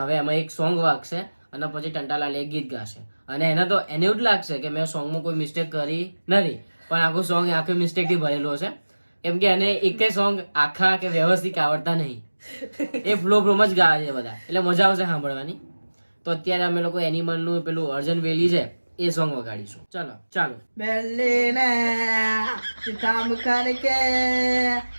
હવે એમાં એક સોંગ વાગશે અને પછી ટંટાલાલ એક ગીત ગાશે અને એને એવું જ લાગશે કે મેં સોંગમાં કોઈ મિસ્ટેક કરી નથી, પણ આખું સોંગ આખું મિસ્ટેકથી ભરેલો છે કેમ કે એને એકેય સોંગ આખા કે વ્યવસ્થિત આવડતા નહીં. એ ફ્લોમાં જ ગાવે છે બધા એટલે મજા આવશે સાંભળવાની. તો અત્યારે અમે લોકો એનિમલનું પેલું અર્જન વેલી છે એ સોંગ વગાડીશું. ચાલો. બેલીને ચિતામ કરકે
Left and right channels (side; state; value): both; inverted; correlation -1.00